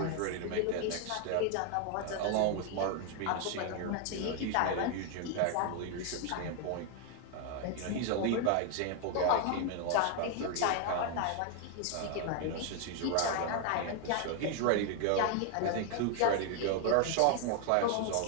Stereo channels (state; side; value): different; both; correlation 0.00